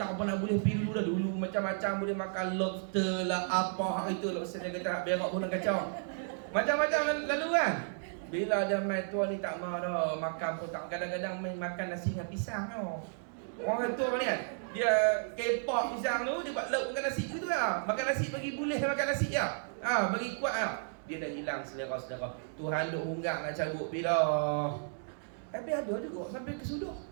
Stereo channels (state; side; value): silent; left; digital silence